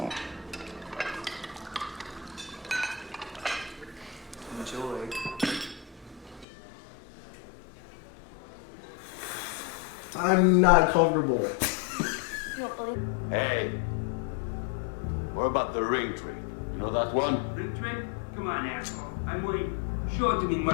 Enjoy. I'm not comfortable. You don't believe? Hey, what about the ring trick? You know that one? Ring trick? Come on, asshole. I'm waiting. Show it to me,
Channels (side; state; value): right; drops out; at 6.5 s